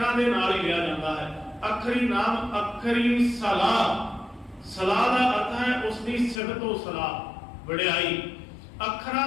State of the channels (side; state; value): right; drops out; at 6.4 s